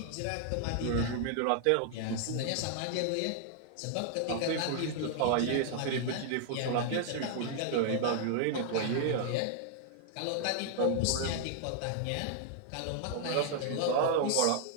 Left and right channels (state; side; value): different; both; correlation 0.00